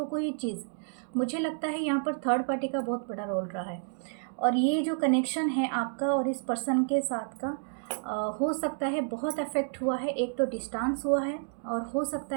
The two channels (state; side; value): silent; left; digital silence